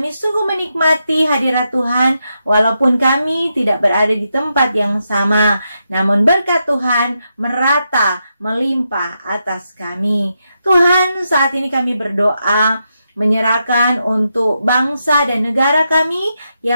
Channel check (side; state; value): both; inverted; correlation -0.85